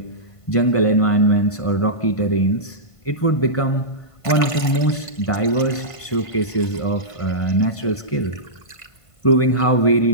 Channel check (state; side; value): late; right; 1.5 ms